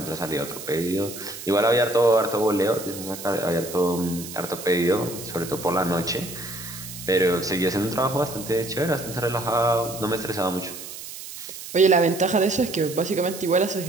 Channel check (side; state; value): right; noise; hiss, 11 dB below the sound